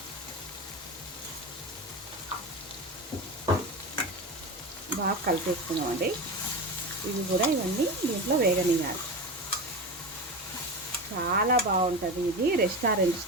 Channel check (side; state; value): both; normal; correlation 0.23